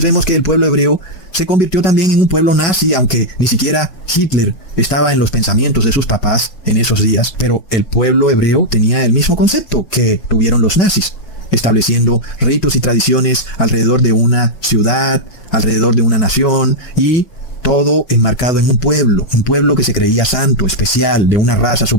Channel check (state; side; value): late; right; 5.3 ms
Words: vemos que el pueblo hebreo se convirtió también en un pueblo nazi, aunque ni siquiera Hitler estaba en los pensamientos de sus papás en esos días. Pero el pueblo hebreo tenía el mismo concepto que tuvieron los nazis, estableciendo ritos y tradiciones alrededor de una ciudad, alrededor de una nación, y todo enmarcado en un pueblo que se creía santo, especial, de una raza